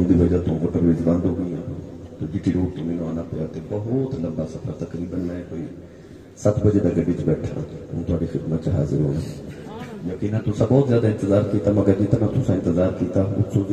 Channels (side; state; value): both; identical; correlation 1.00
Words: کی وجہ تو موٹر ویز بند ہو گئی تو جی ٹی روڈ تو میں آنا پیا بہت لمبا سفر تقریباً میں کوئی 7 بجے تک گڈی بیٹھا ہوں تھوڑی خدمت حاضر ہونا یقینا تو سب بہت زیادہ انتظار کیتا مگر جتنا تو انتظار کیتا اس سے